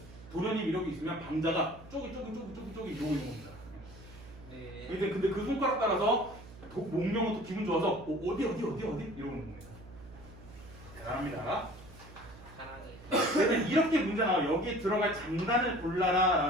도련님 이렇게 있으면 방자가 쪼기 이러고 있는 겁니다. 네. 근데 그 손가락 따라서 목명은 또 기분 좋아서 어디 이러는 겁니다. 대단합니다. 사랑해. 그래서 이렇게 문제 나와. 여기 들어갈 장단을 골라라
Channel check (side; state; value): right; noise; hum, 19 dB below the sound